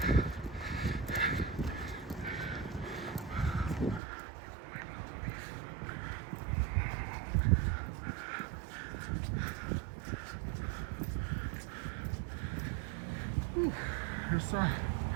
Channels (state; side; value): drops out; left; at 4.0 s